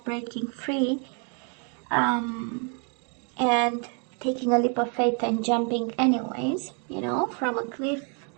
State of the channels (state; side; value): quieter; left; 39.2 dB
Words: breaking free, and taking a leap of faith and jumping anyways, you know, from a cliff.